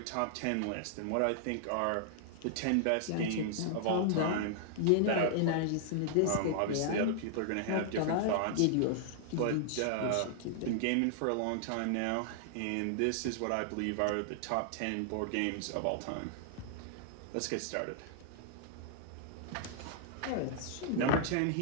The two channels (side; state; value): both; different; correlation -0.01